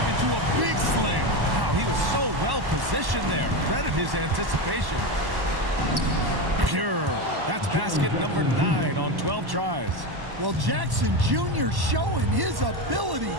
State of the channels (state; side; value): late; left; 1.1 ms